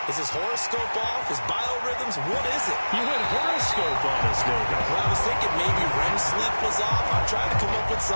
Is his horoscope off? His biorhythms? What is it? You went horoscope on us, David. Well, I was thinking maybe REM sleep was off. I'm trying to come up with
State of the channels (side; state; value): both; inverted; correlation -1.00